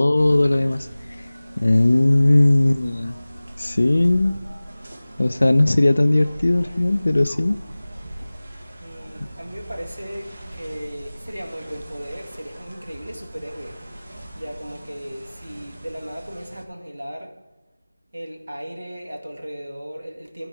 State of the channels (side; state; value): both; inverted; correlation -0.99